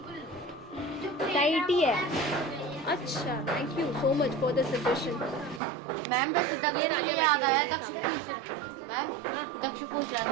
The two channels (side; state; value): left; drops out; at 5.6 s